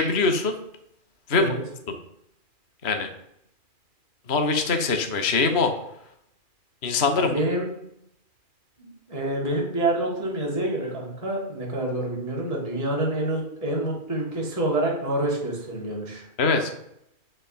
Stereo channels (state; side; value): late; right; 2.4 ms